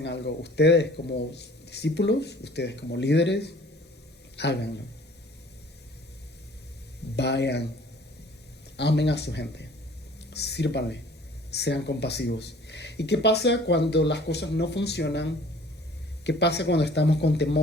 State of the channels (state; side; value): normal; both; correlation 0.51